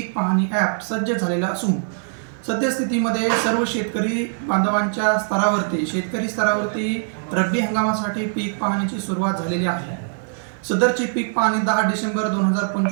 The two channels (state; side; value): silent; left; 61 dB below the other